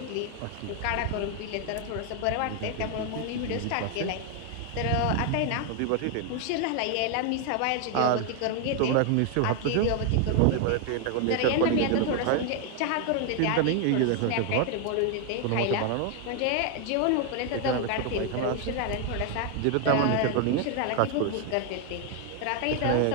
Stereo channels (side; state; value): both; different; correlation 0.01